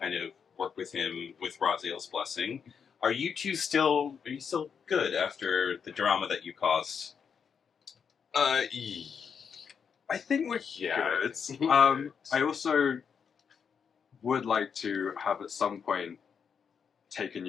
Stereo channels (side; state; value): right; quieter; 6.7 dB